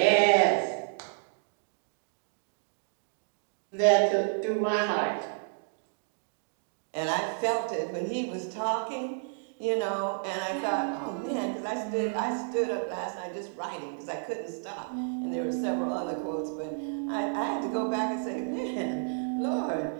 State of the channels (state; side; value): silent; left; digital silence